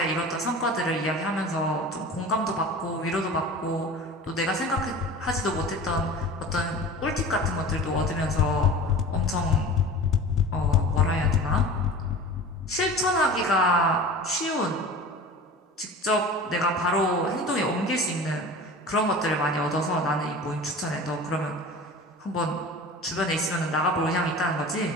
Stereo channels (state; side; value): normal; both; correlation 0.37